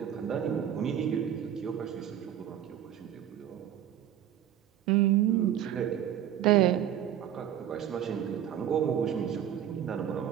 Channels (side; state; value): left; quieter; 10.5 dB